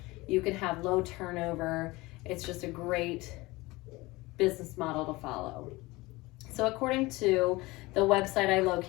you can have low turnover. It's just a great business model to follow. So according to the website I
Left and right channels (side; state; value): right; quieter; 21.6 dB